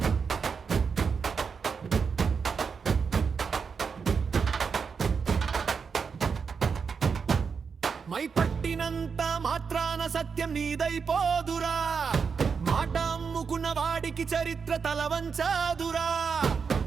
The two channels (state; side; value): quieter; left; 5.8 dB